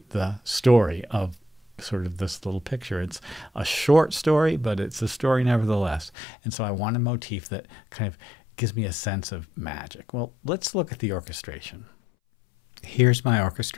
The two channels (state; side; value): drops out; right; at 6.1 s